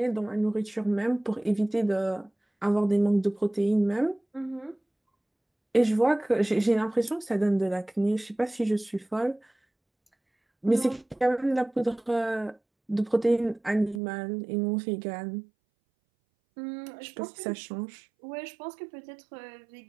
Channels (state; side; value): drops out; left; at 14.0 s